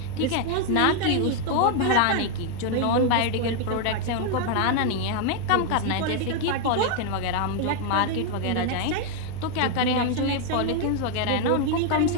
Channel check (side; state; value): both; different; correlation 0.00